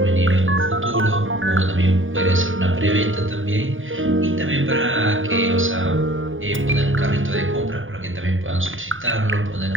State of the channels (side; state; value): left; late; 0.58 ms